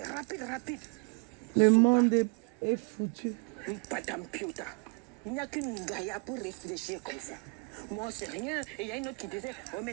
rapide, rapide. Le Souba, monde est foutu. Madame Piota. Il n'y a qu'une gaïa pour réfléchir comme ça. Moi, c'est rien. Et il y a une autre qui disait, oh,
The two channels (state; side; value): quieter; left; 35.4 dB